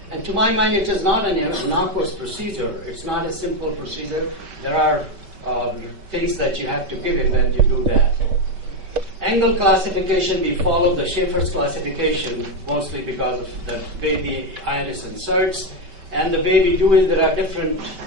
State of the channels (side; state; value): left; late; 5.2 ms